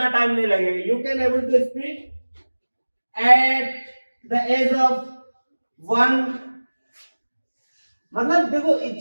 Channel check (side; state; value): both; inverted; correlation -1.00